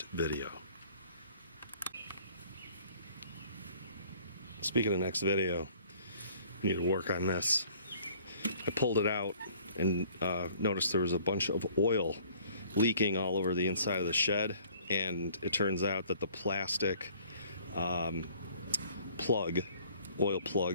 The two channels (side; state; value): both; inverted; correlation -0.55